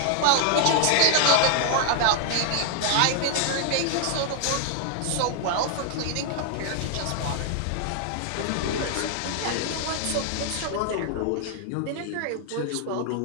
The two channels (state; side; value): different; both; correlation 0.00